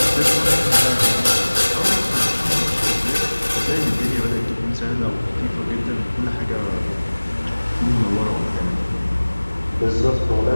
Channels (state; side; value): inverted; both; correlation -1.00